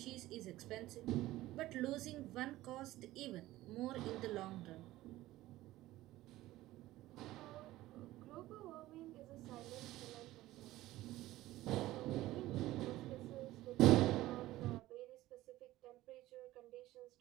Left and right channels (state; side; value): quieter; left; 16.4 dB